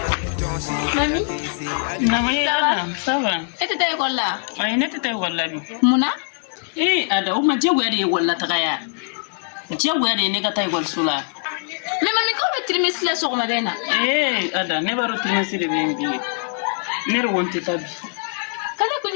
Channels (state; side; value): silent; right; 64 dB below the other